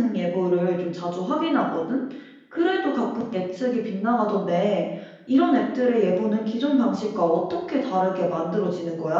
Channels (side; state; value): both; identical; correlation 1.00